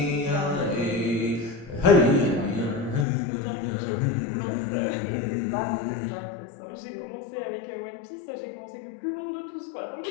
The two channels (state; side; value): drops out; right; at 3.1 s